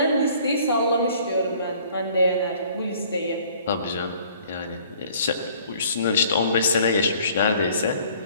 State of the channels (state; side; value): inverted; both; correlation -0.55